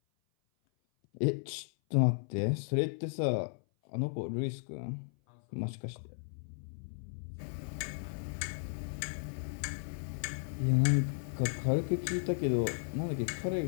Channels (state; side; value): silent; right; 55 dB below the other